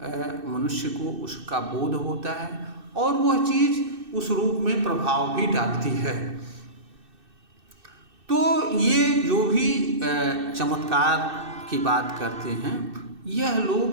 मनुष्य को उसका बोध होता है और वह चीज़ उस रूप में प्रभाव भी डालती है। तो ये जो भी चमत्कार की बात करते हैं, यह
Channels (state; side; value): late; left; 2.6 ms